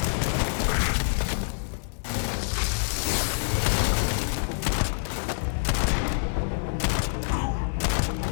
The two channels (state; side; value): silent; right; digital silence